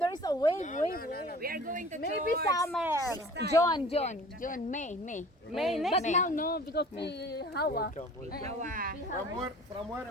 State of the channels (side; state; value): both; normal; correlation 0.45